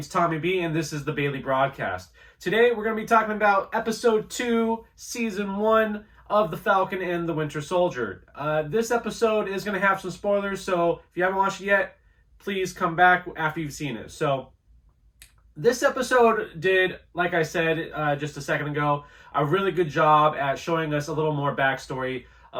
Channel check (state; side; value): identical; both; correlation 1.00